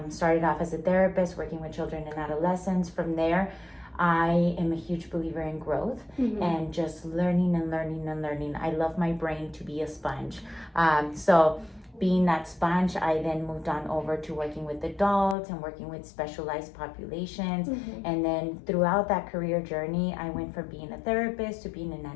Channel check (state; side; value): drops out; right; at 15.4 s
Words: Started off as a therapist, working with children and adolescents. From there, I am a huge believer in growth and just learning and learning and learning. I love my brain to be a sponge. So being that sponge, I then moved on over to working with adults and working with specialized populations. And then throughout that career journey, I went from being a therapist to being an